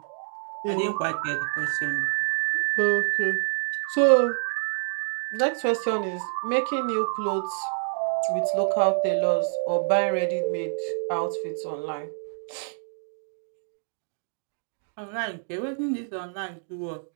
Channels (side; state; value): left; silent; digital silence